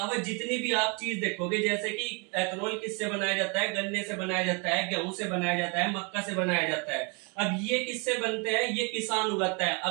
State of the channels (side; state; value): left; quieter; 32.5 dB